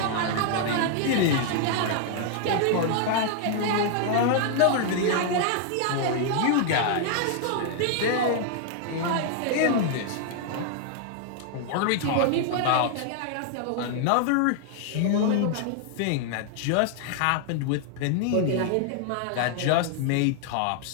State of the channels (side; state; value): both; different; correlation 0.00